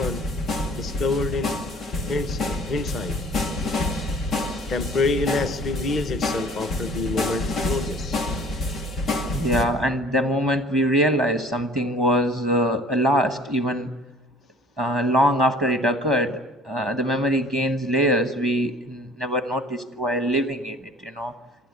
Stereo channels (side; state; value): both; normal; correlation 0.50